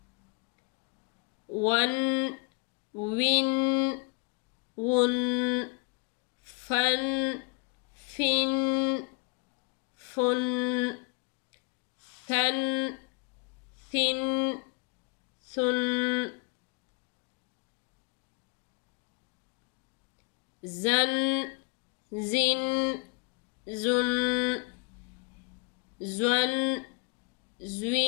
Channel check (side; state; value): right; quieter; 30.5 dB